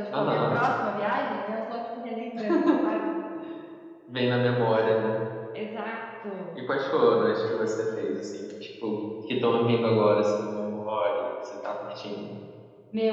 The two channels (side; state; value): both; identical; correlation 1.00